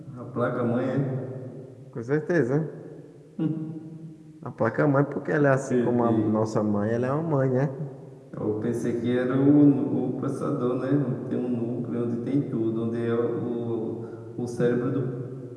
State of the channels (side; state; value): both; identical; correlation 1.00